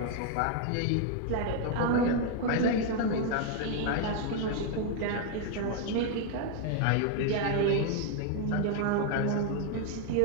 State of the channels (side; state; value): both; different; correlation 0.00